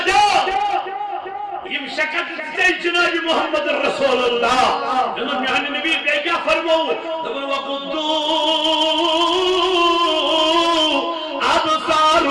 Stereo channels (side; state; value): both; identical; correlation 1.00